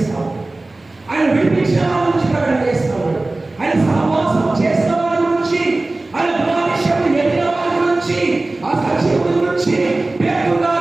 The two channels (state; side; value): quieter; left; 3.0 dB